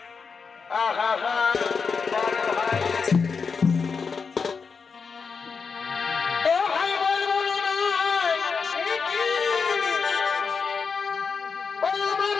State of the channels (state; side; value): quieter; right; 5.4 dB